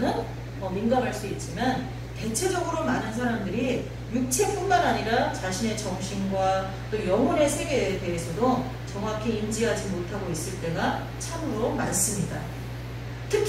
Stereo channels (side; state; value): both; identical; correlation 1.00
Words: 민감할 수 있지만, 대체적으로 많은 사람들이 육체뿐만 아니라 자신의 정신과 또 영혼의 세계에 대해서도 정확히 인지하지 못하고 있을 때가 참으로 많습니다.